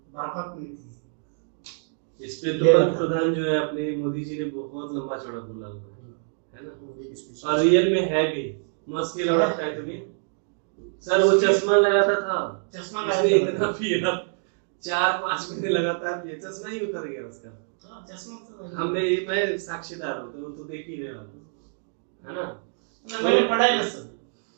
बर्फत मिलती है। इस पे तो प्रधान जो है अपने मोदी जी ने बहुत लंबा चौड़ा बोला हुआ है ना, और रियल में है भी। मस्त के लौटा है तुम्हें सर, वो चश्मा लगाता था, चश्मा उसने इतना पिया 4-5 महीने लगातार पिया, चश्मा ही उतर गया उसका। चश्मा तो हमने, मैं साक्षीदार हूँ, तो देख ही रहे हो, है ना। मैंने पढ़ा है सर,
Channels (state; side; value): silent; left; digital silence